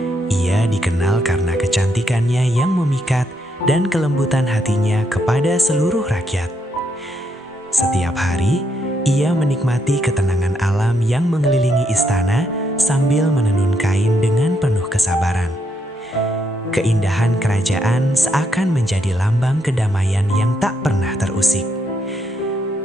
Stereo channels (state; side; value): normal; both; correlation 0.77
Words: Ia dikenal karena kecantikannya yang memikat dan kelembutan hatinya kepada seluruh rakyat. Setiap hari, ia menikmati ketenangan alam yang mengelilingi istana sambil menenun kain dengan penuh kesabaran. Keindahan kerajaan seakan menjadi lambang kedamaian yang tak pernah terusik.